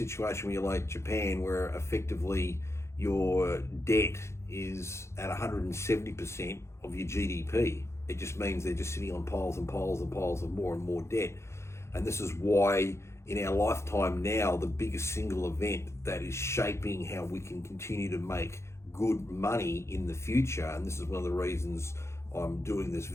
where you're like Japan, where effectively your debt is at 170% of your GDP. It just means they're just sitting on piles and piles and piles of more and more debt. And this is why in our lifetime now, the biggest single event that is shaping how we can continue to make good money in the future, and this is one of the reasons I'm doing this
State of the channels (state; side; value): late; right; 0.13 ms